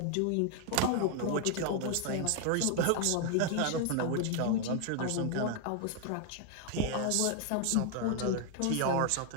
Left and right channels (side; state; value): both; different; correlation 0.00